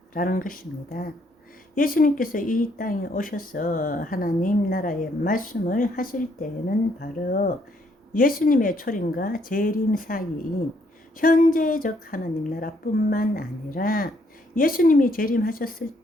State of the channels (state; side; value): normal; both; correlation 0.70